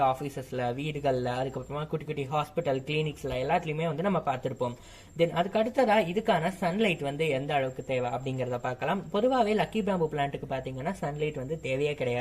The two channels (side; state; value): both; identical; correlation 1.00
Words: ஆபீசஸ்ல, வீடுகள்ல, அதுக்கப்புறமா குட்டி குட்டி ஹாஸ்பிட்டல், கிளினிக்ஸ்ல எல்லாத்துலயுமே வந்து நம்ம பார்த்திருப்போம். தென் அதுக்கு அடுத்ததா இதுக்கான சன்லைட் வந்து எந்த அளவுக்கு தேவை அப்படிங்கறத பார்க்கலாம். பொதுவாகவே லக்கி பேம்பு பிளான்ட்டுக்கு பாத்தீங்கன்னா சன்லைட் வந்து தேவையே